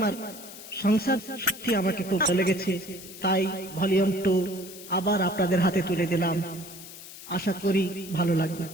সংসার সত্যি আমাকে খুব ভালো লেগেছে, তাই ভলিউম 2 আবার আপনাদের হাতে তুলে দিলাম। আশা করি ভালো লাগবে।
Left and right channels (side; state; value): left; noise; hiss, 15 dB below the sound